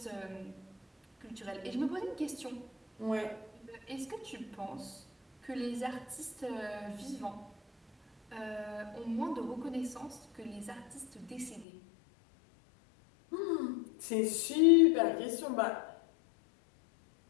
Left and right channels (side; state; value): right; drops out; at 11.7 s